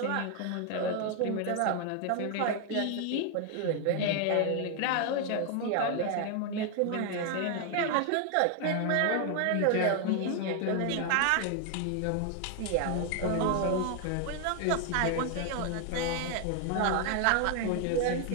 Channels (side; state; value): both; different; correlation 0.00